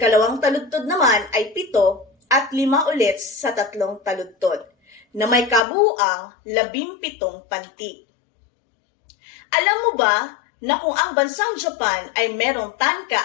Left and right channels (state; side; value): drops out; right; at 5.7 s